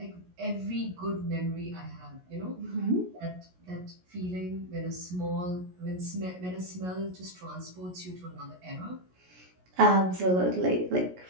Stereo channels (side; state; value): left; late; 16 ms